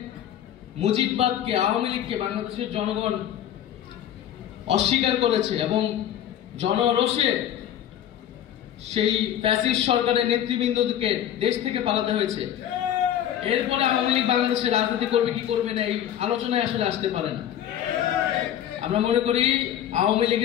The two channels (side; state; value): right; quieter; 10.7 dB